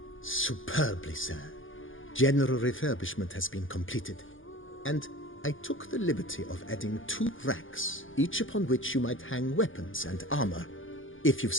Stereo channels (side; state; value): right; late; 0.58 ms